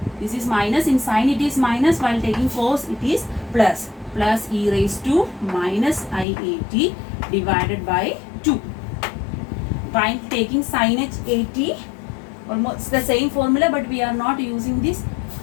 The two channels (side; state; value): right; drops out; at 6.2 s